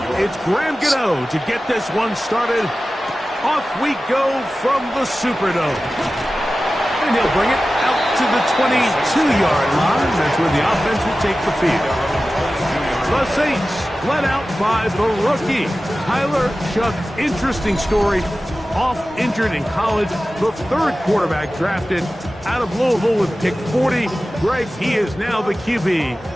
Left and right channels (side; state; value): both; normal; correlation 0.95